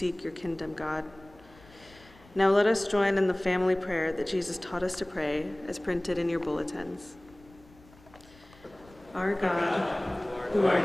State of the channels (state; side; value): noise; left; rumble, 25 dB below the sound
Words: your kingdom, God. Now let us join in the family prayer that Jesus taught us to pray, as printed in your bulletins. Our God, who art